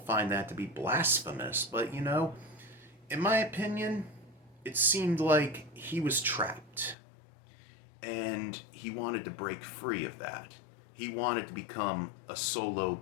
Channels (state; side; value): drops out; right; at 7.0 s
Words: that to be blasphemous, but in my opinion, it seemed like he was trapped. And he wanted to break free of that. He wanted to become a solo